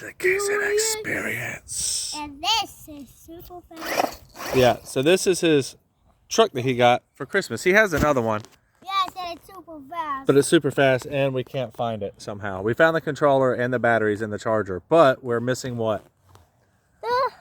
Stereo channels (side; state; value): both; identical; correlation 1.00